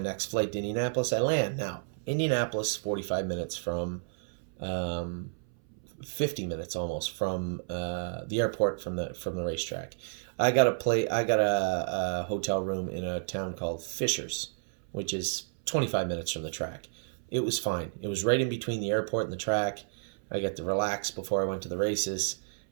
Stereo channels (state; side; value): silent; left; 57 dB below the other